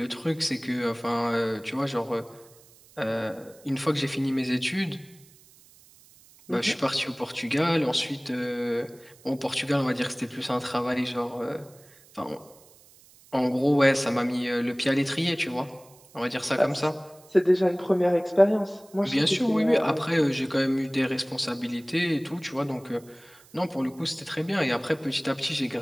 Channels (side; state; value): right; noise; hiss, 26 dB below the sound